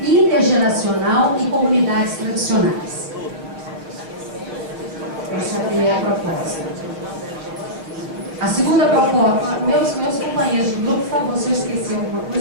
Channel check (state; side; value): late; left; 6.7 ms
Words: intergeracional e comunidades tradicionais. Essa é a primeira proposta. A segunda proposta, meus companheiros de grupo, por favor, se eu esqueci alguma